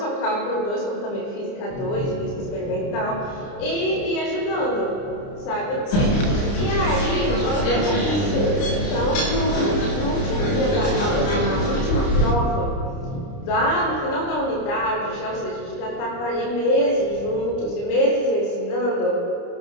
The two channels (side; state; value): right; late; 29 ms